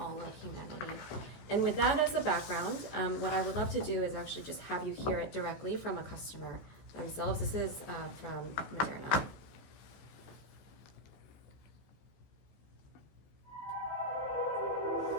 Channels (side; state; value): right; late; 14 ms